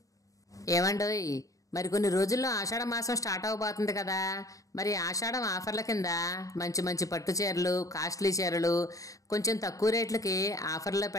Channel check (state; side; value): late; right; 0.16 ms